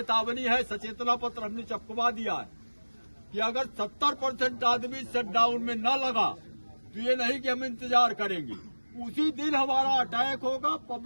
है, सचेतना पत्र हमने छपवा दिया है कि अगर 70% आदमी शटडाउन में न लगा तो ये नहीं कि हम इंतजार करेंगे, उसी दिन हमारा अटैक होगा,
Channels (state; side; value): inverted; both; correlation -1.00